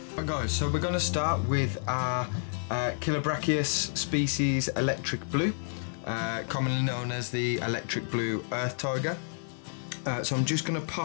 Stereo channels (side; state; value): right; silent; 58 dB below the other